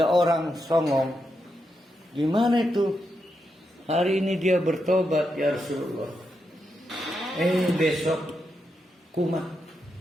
orang songong. Gimana itu? Hari ini dia bertobat, ya Rasulullah. Besok kumat.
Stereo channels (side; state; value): both; normal; correlation 0.84